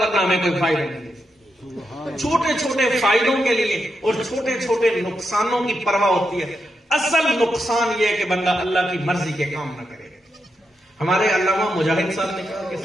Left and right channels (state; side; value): normal; both; correlation 0.85